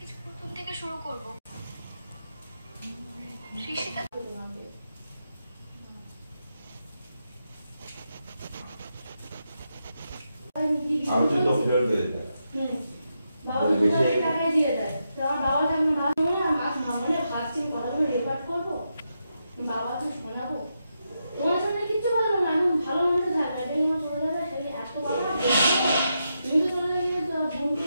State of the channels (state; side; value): inverted; both; correlation -0.85